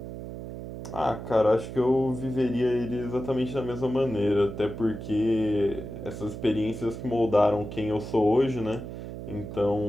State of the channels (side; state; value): right; noise; hum, 9 dB below the sound